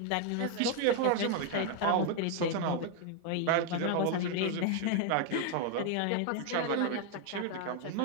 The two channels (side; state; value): both; different; correlation 0.01